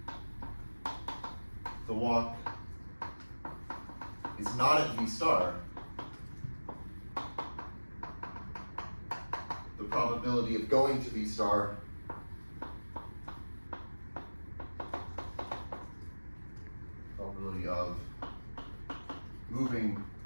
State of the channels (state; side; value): inverted; both; correlation -1.00